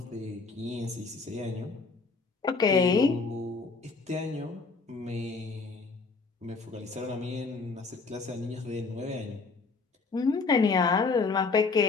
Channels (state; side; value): quieter; right; 4.3 dB